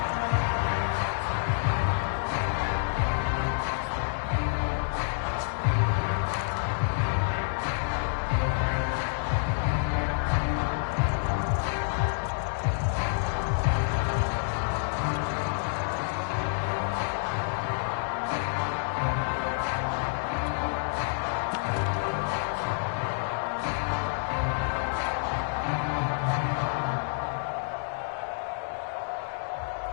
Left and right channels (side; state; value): right; silent; digital silence